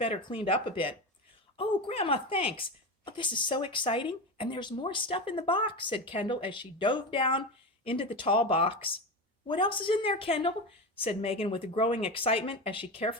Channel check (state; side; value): normal; both; correlation 0.21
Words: cleaned up a bit. Oh, Grandma, thanks. Oh, this is so exciting. And there's more stuff in the box, said Kendall as she dove down into the tall box. What else is in there, Kendall? Said Megan with growing excitement as she